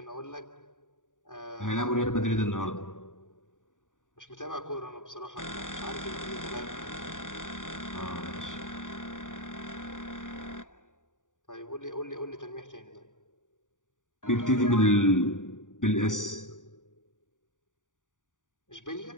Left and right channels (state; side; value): late; right; 0.87 ms